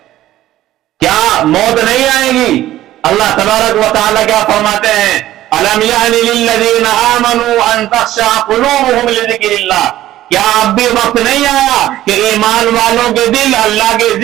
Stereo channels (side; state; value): left; quieter; 14.2 dB